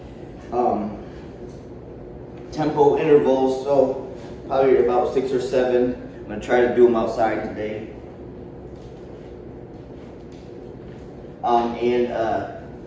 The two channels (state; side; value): identical; both; correlation 1.00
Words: tempo intervals, so probably about 6 or 7. I'm gonna try to do them outside today.